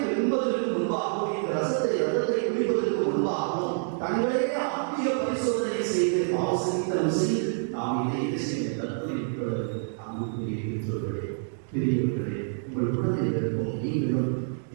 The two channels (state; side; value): silent; left; digital silence